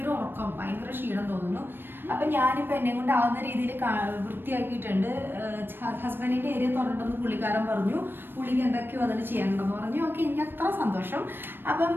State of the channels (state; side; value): late; left; 0.097 ms